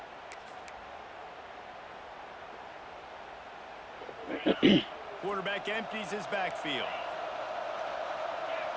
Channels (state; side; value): identical; both; correlation 1.00